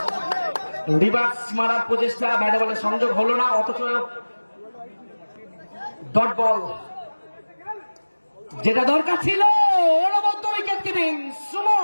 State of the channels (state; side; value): inverted; both; correlation -1.00